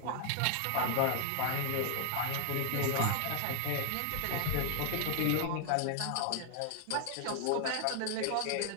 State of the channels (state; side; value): different; both; correlation -0.01